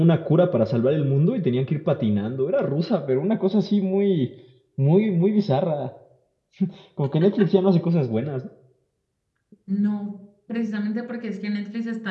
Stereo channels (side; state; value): both; identical; correlation 1.00